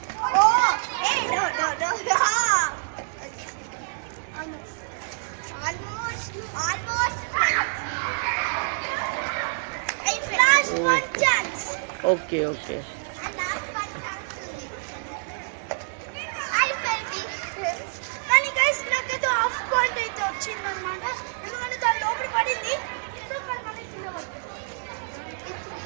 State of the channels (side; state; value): left; silent; 57 dB below the other